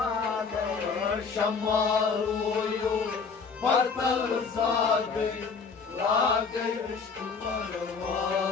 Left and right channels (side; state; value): right; quieter; 5.2 dB